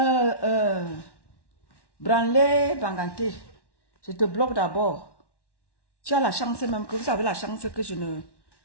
Branlé, Banganté, je te bloque d'abord. Tu as la chance même que vous avez la chance que je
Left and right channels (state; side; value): late; right; 1.1 ms